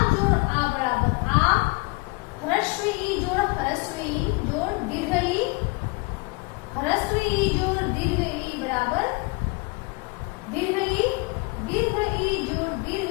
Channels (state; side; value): quieter; right; 28.0 dB